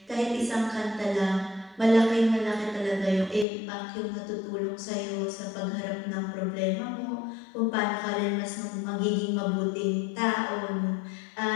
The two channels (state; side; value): drops out; right; at 3.5 s